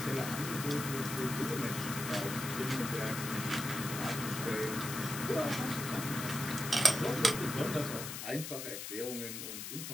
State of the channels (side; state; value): left; noise; hiss, 7 dB below the sound